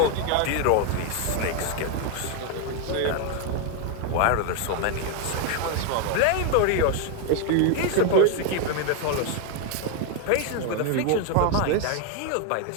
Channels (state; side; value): different; both; correlation 0.01